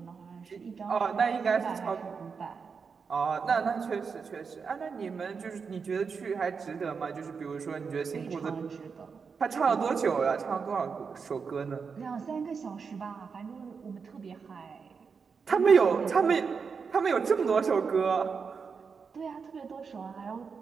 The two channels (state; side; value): quieter; left; 5.6 dB